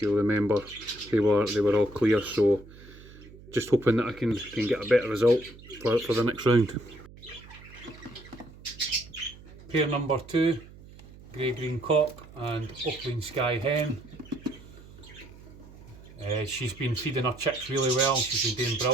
remember, they were all clear, so just hoping that I can get a better result for the next round. Pair number 2, grey-green cock and opaline sky hen. She's been feeding her chicks really well. She's been doing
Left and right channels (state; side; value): noise; right; hum, 19 dB below the sound